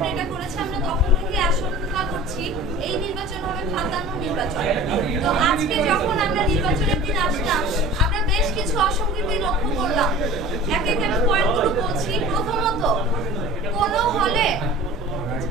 এটা করেছে আমরা তখন থেকে আশঙ্কা করছি এই নির্বাচন হবে ফাঁদানো নির্বাচন। তো আজকে যখন আমরা নির্বাচনের দিন আসলাম আমরা বেশ কিছু অসঙ্গতি লক্ষ্য করলাম। এক এক আমি পয়েন্টগুলো বলছি। প্রথমত, কোনো হলে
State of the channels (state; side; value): normal; both; correlation 0.41